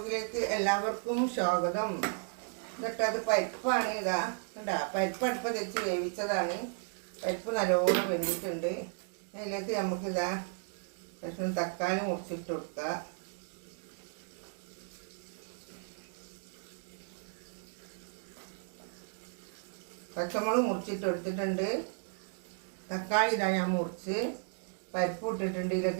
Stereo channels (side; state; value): left; silent; 55 dB below the other